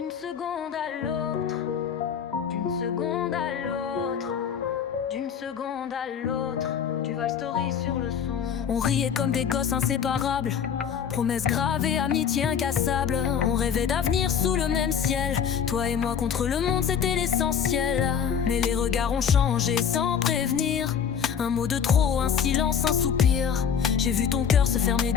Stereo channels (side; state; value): right; quieter; 7.7 dB